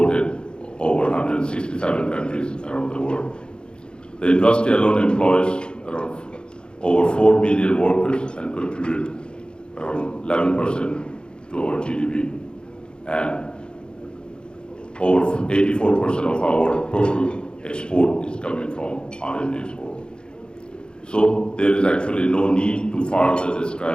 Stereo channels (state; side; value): late; right; 0.051 ms